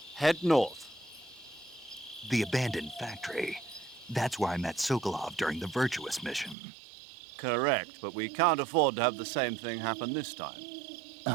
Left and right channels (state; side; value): drops out; left; at 6.6 s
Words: Head north. The abandoned factory. That's where I met Sokolov during the Virtuous mission. Correct, but we can't afford to have the same thing happen this time.